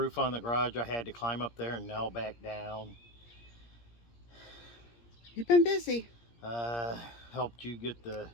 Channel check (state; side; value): late; right; 17 ms